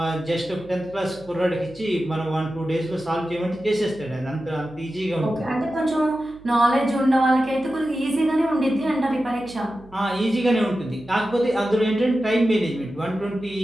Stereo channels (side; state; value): right; noise; hum, 24 dB below the sound